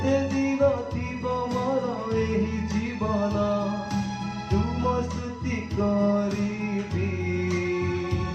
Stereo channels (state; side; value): identical; both; correlation 1.00